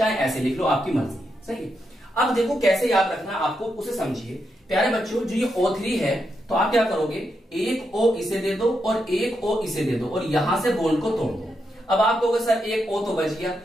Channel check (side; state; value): both; normal; correlation 0.83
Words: ऐसे लिख लो, आपकी मर्जी है, सही है। अब देखो कैसे याद रखना है आपको, उसे समझिए प्यारे बच्चों। जो ये O3 है तो आप क्या करोगे, एक O इसे दे दो और एक O इसे दे दो और यहां से बॉन्ड को तोड़ दो। अब आप कहोगे सर एक O तो बच गया,